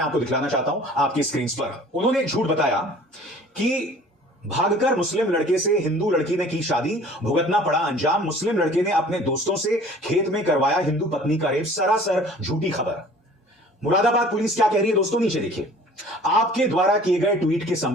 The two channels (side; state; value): both; normal; correlation 0.48